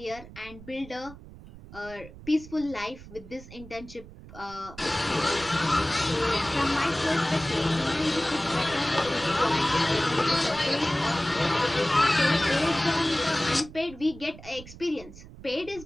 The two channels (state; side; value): noise; right; rumble, 17 dB below the sound